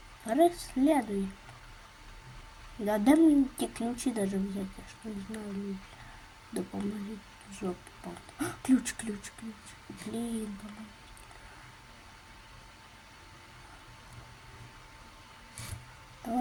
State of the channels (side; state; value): both; identical; correlation 1.00